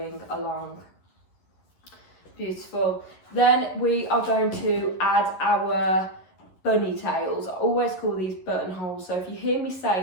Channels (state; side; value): late; right; 11 ms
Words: along. Beautiful. Then we are going to add our bunny tails. I always call these buttonholes. So if you hear me